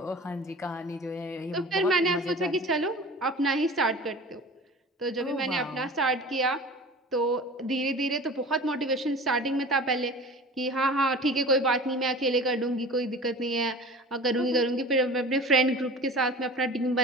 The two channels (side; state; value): both; normal; correlation 0.39